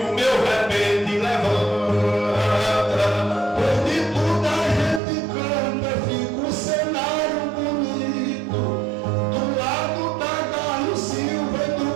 o meu repente levanta. Pois de tudo a gente canta, fica um cenário bonito. Do lado tá Carlos Silva e do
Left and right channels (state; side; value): drops out; left; at 5.0 s